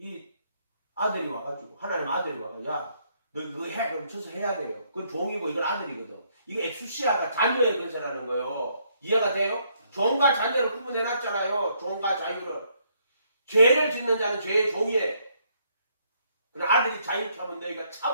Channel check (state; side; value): inverted; both; correlation -0.71